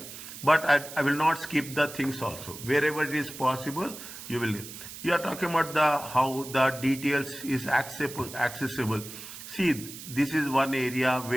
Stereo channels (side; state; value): right; noise; hiss, 12 dB below the sound